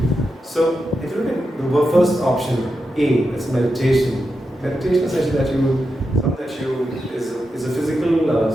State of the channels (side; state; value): both; normal; correlation 0.88